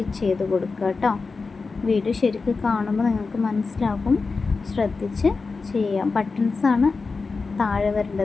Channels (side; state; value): right; quieter; 4.3 dB